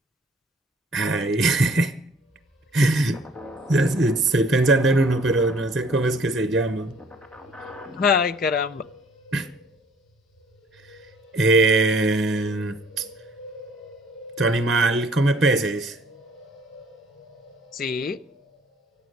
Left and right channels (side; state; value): both; normal; correlation 0.57